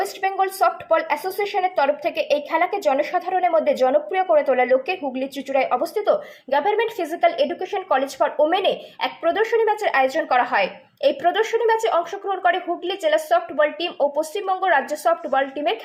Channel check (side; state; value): both; identical; correlation 1.00